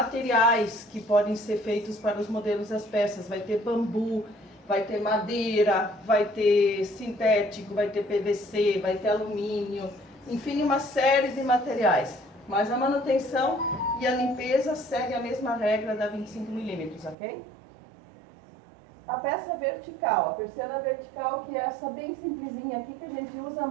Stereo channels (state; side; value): drops out; left; at 17.2 s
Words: que podem ser feitos para os modelos das peças. Vai ter bambu, vai ter madeira, vai ter sintético, vai ter PVC, vai ter alumínio, enfim, uma série de materiais. Mas a manutenção e a limpeza segue a mesma regra da 25 milímetros, ok? A peça vertical, a persiana vertical, que é essa bem simplesinha aqui, que a gente usa